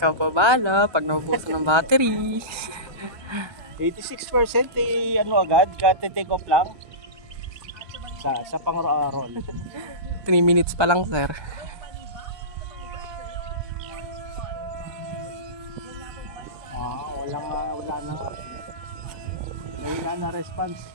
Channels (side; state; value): left; late; 1.3 ms